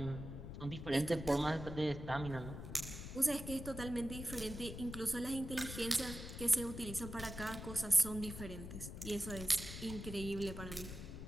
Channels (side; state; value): left; noise; rumble, 9 dB below the sound